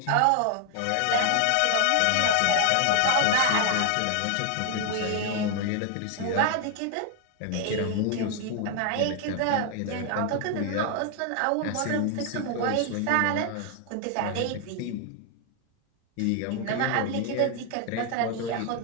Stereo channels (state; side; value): different; both; correlation 0.00